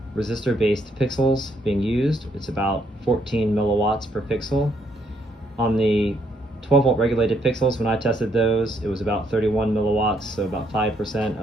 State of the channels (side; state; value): both; normal; correlation 0.72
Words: resistor-based pixels being used. It's about 14 milliwatts per pixel. On the 12 volt regulated pixels, when I tested those, it was about 31 milliwatts, so about 5%